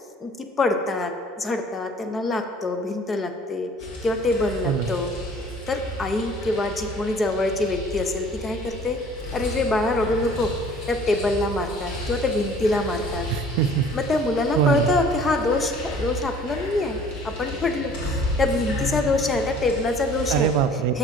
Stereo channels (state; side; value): normal; both; correlation 0.51